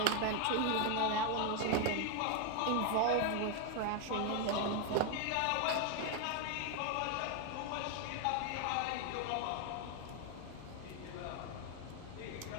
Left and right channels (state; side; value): different; both; correlation 0.01